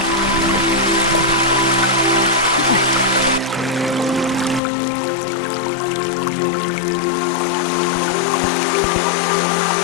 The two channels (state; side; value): drops out; right; at 4.6 s